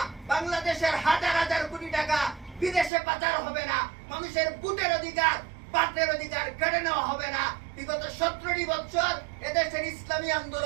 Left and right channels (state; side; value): drops out; left; at 2.9 s